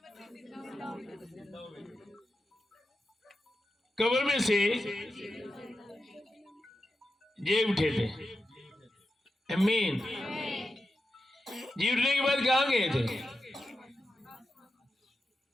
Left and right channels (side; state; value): both; normal; correlation 0.88